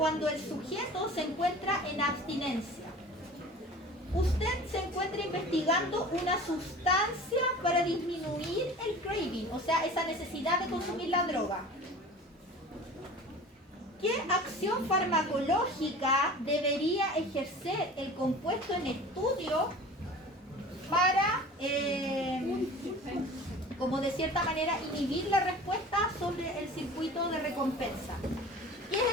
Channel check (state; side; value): normal; both; correlation 0.40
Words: el sujeto se encuentra en abstinencia. Usted se encuentra investigando una sustancia para disminuir el craving, o sea, esa necesidad de consumir la droga. ¿Qué acción farmacológica debería ejercer el compuesto en estudio para, como de cierta manera, inhibir la respuesta sobre el circuito de recompensa? ¿Qué es